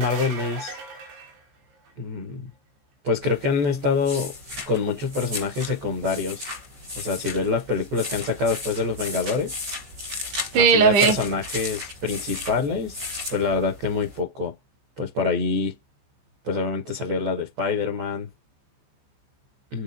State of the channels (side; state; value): left; late; 14 ms